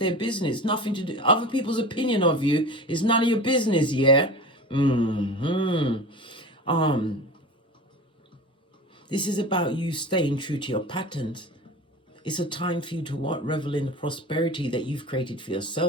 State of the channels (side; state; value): both; normal; correlation 0.33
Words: business. Nothing to do. Other people's opinion of you is none of your business, yeah? This is about you staying true to your patterns. It's a time for you to what? Revel in the prosperity that you've created for